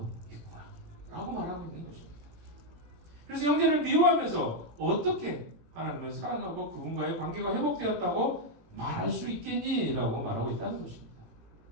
있구나 라고 말하고 있는 것입니다. 그래서 형제를 미워하면서 어떻게 하나님을 사랑하고 그분과의 관계가 회복되었다고 말할 수 있겠니? 라고 말하고 있다는 것입니다.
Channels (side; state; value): left; late; 18 ms